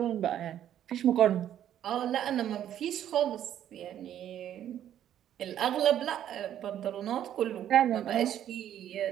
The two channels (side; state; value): left; quieter; 10.8 dB